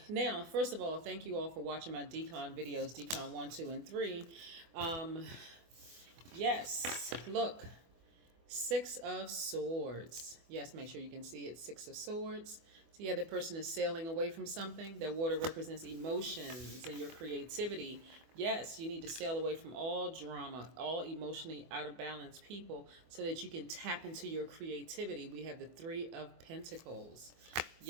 now, first of all, thank you all for watching my decon videos, decon 1, 2, and 3. Yes, look, 6 of Swords. Yes, make sure you can see it, 6 of Swords. So yeah, the person is sailing away from something. That water represents emotions and your creativity. Yes, you need to sail away from all drama, all emotionally out of balance people so that you can tap into your creativity. We have the 3 of Pentacles.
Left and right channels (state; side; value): late; left; 24 ms